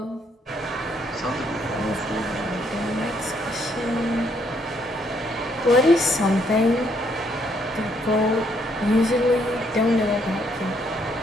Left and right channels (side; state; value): both; normal; correlation 0.71